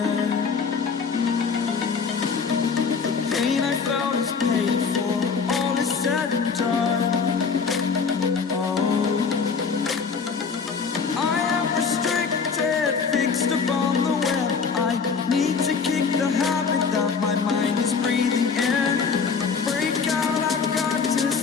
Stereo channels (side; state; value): right; quieter; 5.5 dB